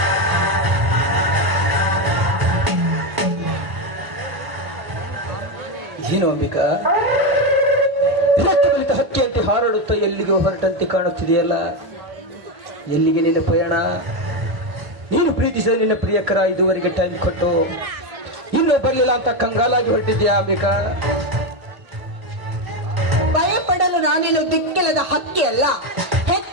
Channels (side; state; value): left; late; 1.8 ms